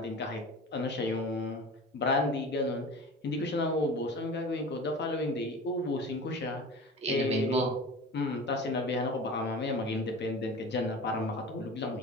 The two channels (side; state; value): both; normal; correlation 0.36